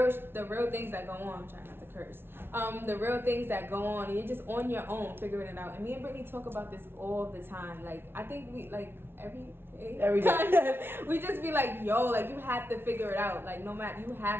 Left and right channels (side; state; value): left; late; 0.11 ms